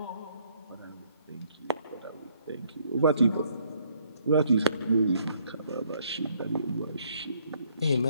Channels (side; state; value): both; inverted; correlation -0.68